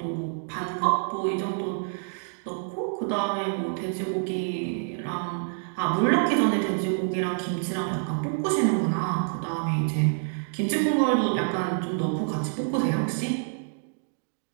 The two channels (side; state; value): left; silent; digital silence